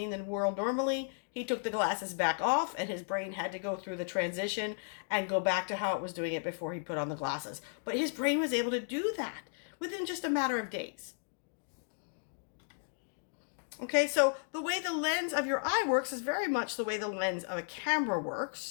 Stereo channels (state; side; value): silent; right; digital silence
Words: the world normally. He took the glasses back off, and his brain had to go through the transition and go back to how it was doing it before he put on the glasses. But his brain was able to do that within just a matter of days. Okay, so the way the lens of your eye works is very much the way the lens of a camera